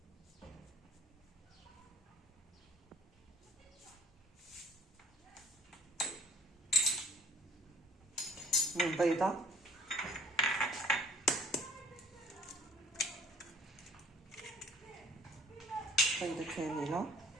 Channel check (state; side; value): normal; both; correlation 0.56